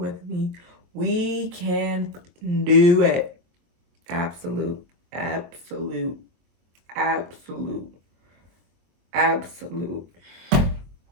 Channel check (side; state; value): left; late; 23 ms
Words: me. We can do it. Absolute, absolute, absolute, absolute.